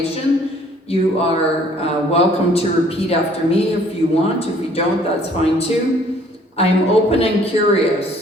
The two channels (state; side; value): normal; both; correlation 0.58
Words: You are welcome to repeat after me if you want. If you don't, that's fine too. I am open and